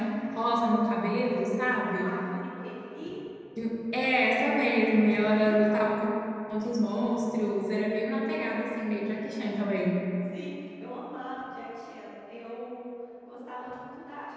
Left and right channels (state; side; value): identical; both; correlation 1.00